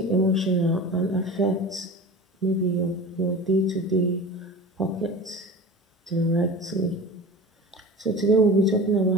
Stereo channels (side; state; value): both; normal; correlation 0.34